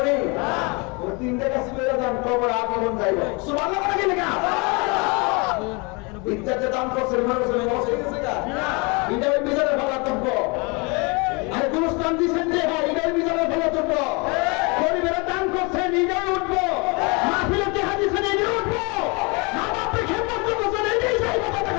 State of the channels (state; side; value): quieter; right; 29.6 dB